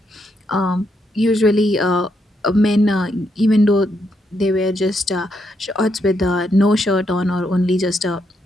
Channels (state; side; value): normal; both; correlation 0.79